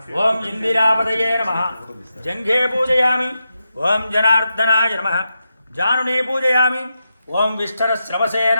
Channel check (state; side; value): inverted; both; correlation -0.88